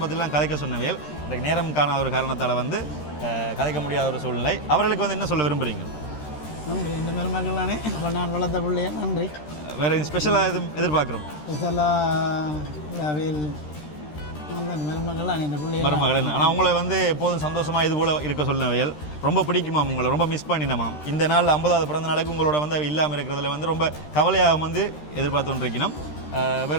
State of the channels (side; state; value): right; late; 13 ms